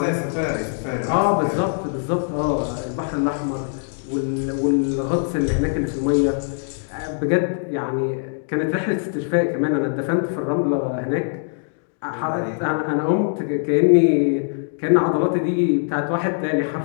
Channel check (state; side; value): silent; right; digital silence